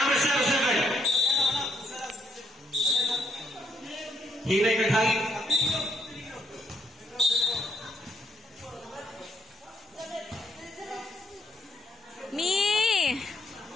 07. Hinay naghangin. Mi.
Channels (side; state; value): both; normal; correlation 0.74